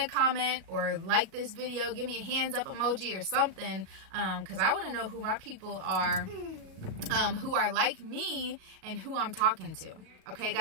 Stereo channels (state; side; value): late; left; 37 ms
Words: comment or like this video. Give me a hands up emoji or something, because I want to know who my people are, who are like me and who I'm talking to. Okay,